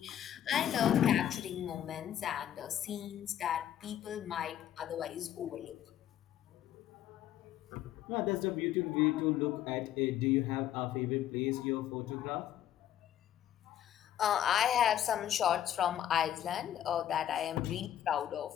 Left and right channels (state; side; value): quieter; right; 11.2 dB